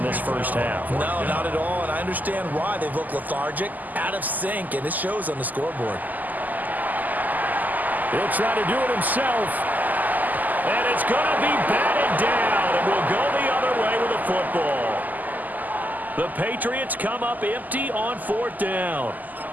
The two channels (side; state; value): left; late; 0.082 ms